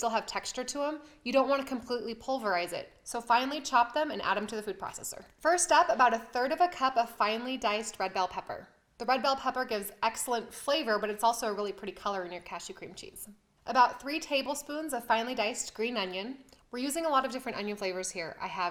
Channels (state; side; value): identical; both; correlation 1.00